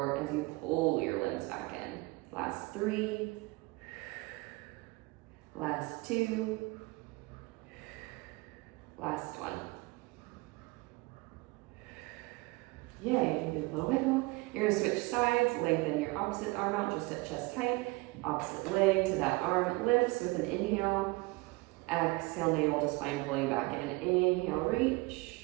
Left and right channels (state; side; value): quieter; left; 23.9 dB